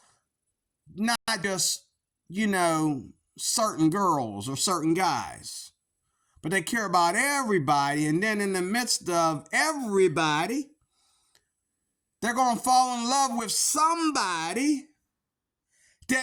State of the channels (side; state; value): both; identical; correlation 1.00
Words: certain girls or certain guys, but they care about everybody. And then in the midst of everybody, they're going to fall in love with somebody